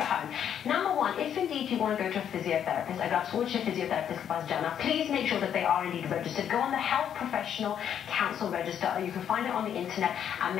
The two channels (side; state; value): right; quieter; 9.1 dB